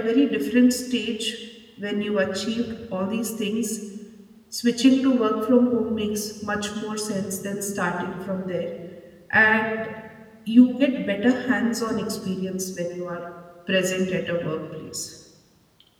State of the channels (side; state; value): both; identical; correlation 1.00